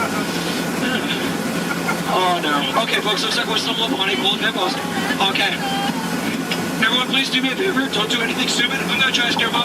Oh, no. Okay, folks, looks like we're stumbling upon a pool of hippos. Okay. Everyone, please do me a favor. Don't do anything stupid. I'm going to try to scare them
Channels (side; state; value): both; identical; correlation 1.00